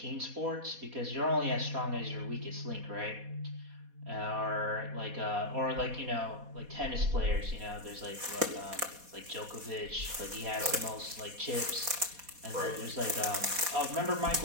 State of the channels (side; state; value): left; late; 4.2 ms